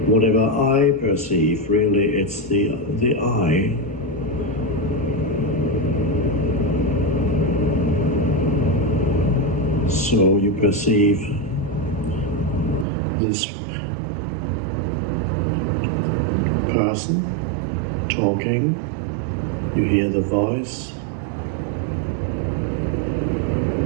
whatever I perceive. Really, it's the I. So you perceive this person talking, you hear the voice,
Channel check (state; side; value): drops out; left; at 12.9 s